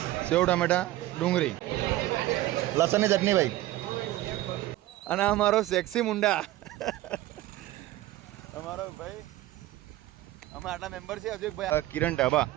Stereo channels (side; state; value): left; quieter; 16.0 dB